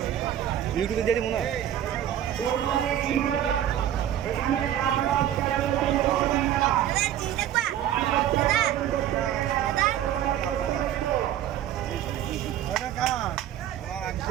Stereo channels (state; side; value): quieter; left; 11.4 dB